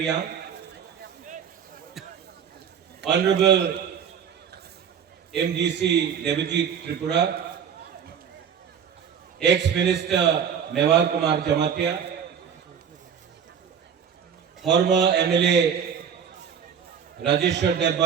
Honorable MGC Devajit Tripura, ex-minister Mewar Kumar Jamatia, former MLA Rajeshwar Dev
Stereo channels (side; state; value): left; quieter; 7.8 dB